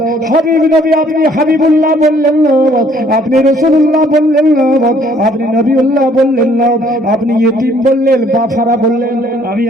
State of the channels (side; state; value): both; normal; correlation 0.61